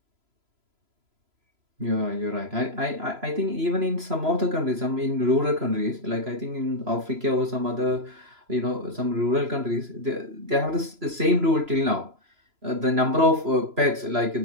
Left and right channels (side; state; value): left; late; 3.0 ms